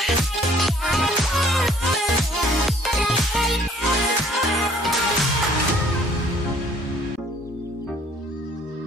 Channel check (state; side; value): normal; both; correlation 0.58